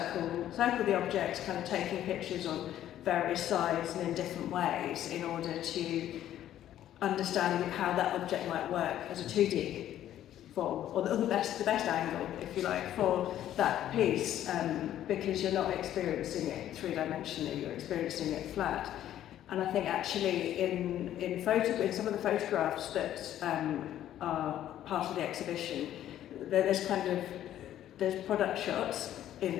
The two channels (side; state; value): right; quieter; 11.9 dB